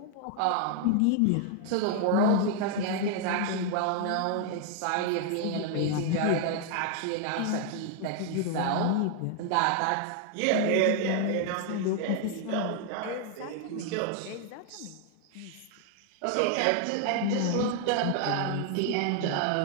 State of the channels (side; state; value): both; different; correlation 0.00